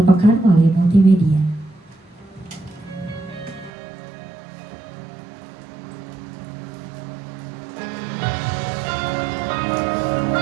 pekan melalui multimedia.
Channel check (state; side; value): drops out; left; at 3.7 s